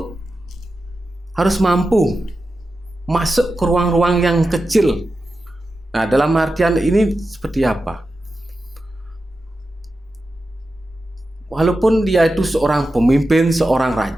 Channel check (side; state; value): both; normal; correlation 0.91